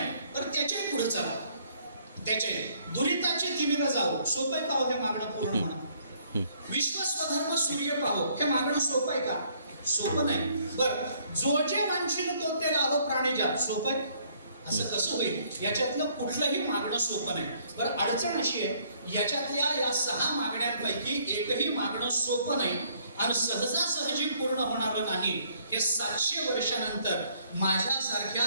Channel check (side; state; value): both; inverted; correlation -0.65